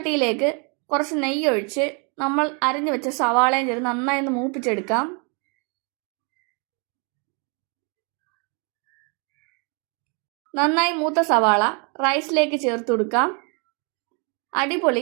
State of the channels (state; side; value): quieter; left; 35.5 dB